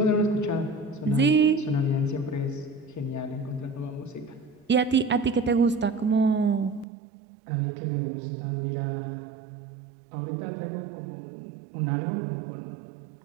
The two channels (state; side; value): drops out; left; at 6.9 s